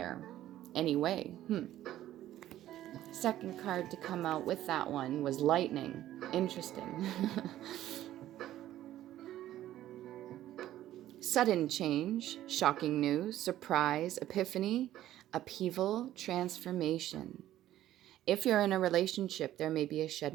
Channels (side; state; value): left; quieter; 13.3 dB